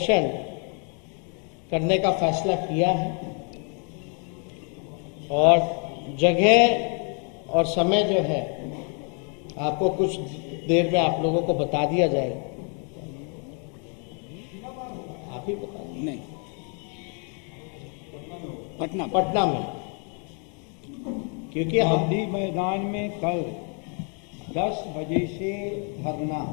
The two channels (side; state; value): right; quieter; 39.3 dB